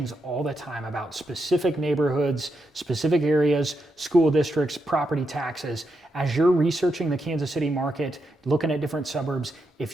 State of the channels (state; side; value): normal; both; correlation 0.84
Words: all the time about specific neighborhoods, specific areas, school districts, property taxes. As you're researching the Kansas City market, looking at different suburbs,